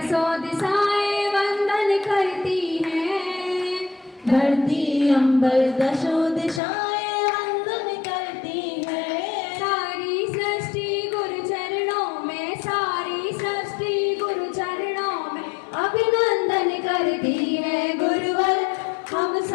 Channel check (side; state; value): right; drops out; at 6.6 s